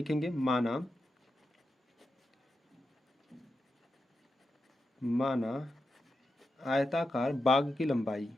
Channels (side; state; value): both; normal; correlation 0.89